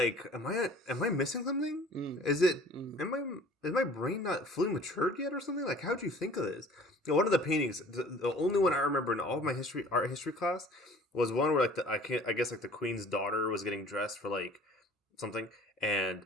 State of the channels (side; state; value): both; normal; correlation 0.48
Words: am I missing something? Is my brain not fully matured yet or something? Like, how'd you think of this? You know, one of the paintings, the only one I remember in all of my art history class was one where like I guess like the queen's daughter was getting dressed for like something, and